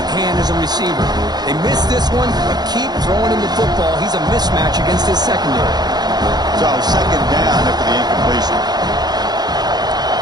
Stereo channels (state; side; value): late; left; 0.20 ms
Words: hand as a receiver. They missed this one, but keep throwing him the football. He's a mismatch against his secondary. So second down after the incompletion.